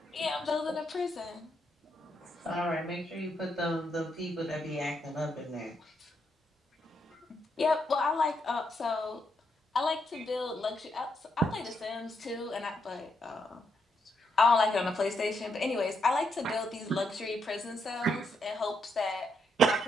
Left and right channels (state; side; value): normal; both; correlation 0.78